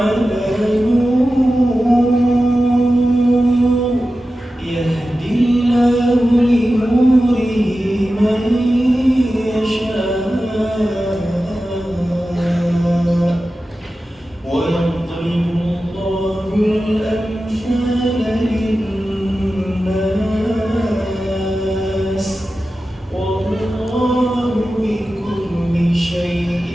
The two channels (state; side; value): normal; both; correlation 0.93